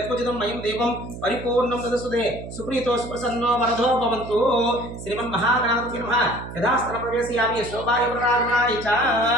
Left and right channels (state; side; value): noise; right; hum, 11 dB below the sound